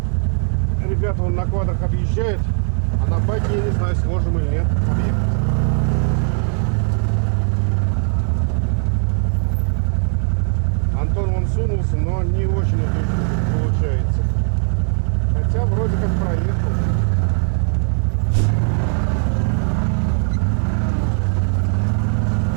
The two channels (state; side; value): silent; left; 56 dB below the other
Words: Ребята вон на квадрах объезжают, а на байке, я не знаю, сможем или нет объехать. Антон вон сунулся, но не очень это получается. Хотя вроде как проехал.